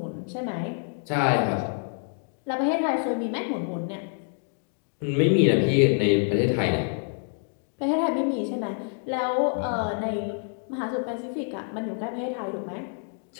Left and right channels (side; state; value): right; silent; 56 dB below the other